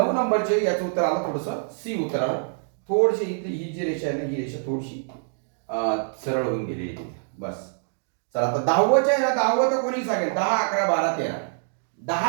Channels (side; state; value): left; silent; digital silence